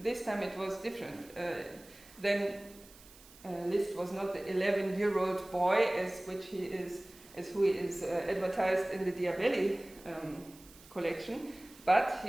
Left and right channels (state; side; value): noise; right; hiss, 22 dB below the sound